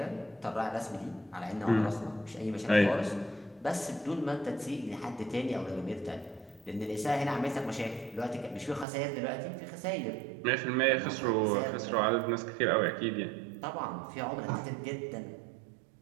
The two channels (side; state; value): left; drops out; at 8.8 s